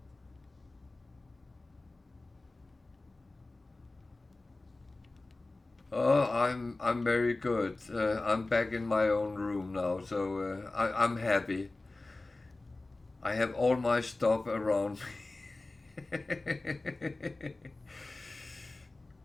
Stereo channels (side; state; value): right; quieter; 3.1 dB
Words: Oh, I'm very good. I'm back in my own room now, so I'm happy. I have all my stuff around me.